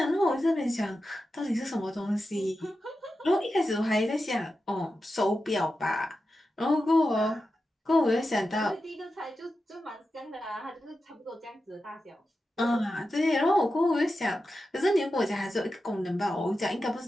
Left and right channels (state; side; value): normal; both; correlation 0.91